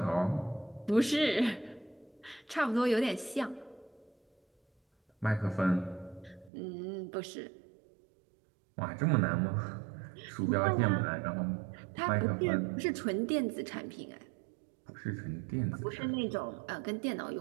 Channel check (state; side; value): drops out; left; at 6.5 s